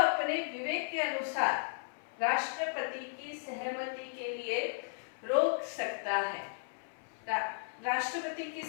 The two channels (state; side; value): silent; right; 54 dB below the other